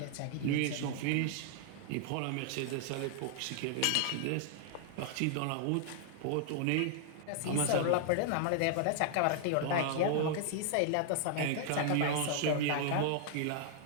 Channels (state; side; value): different; both; correlation -0.01